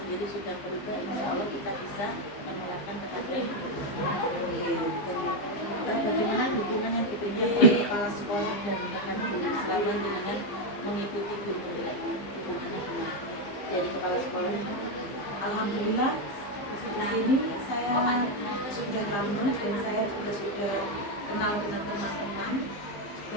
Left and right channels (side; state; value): right; late; 15 ms